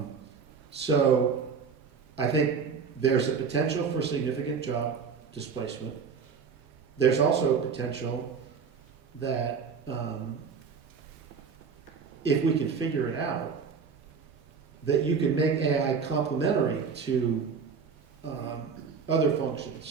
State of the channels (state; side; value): quieter; left; 5.8 dB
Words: So I think there's a potential for significant job displacement. There's also a potential that if we can figure it out, that you can make AI complementary to other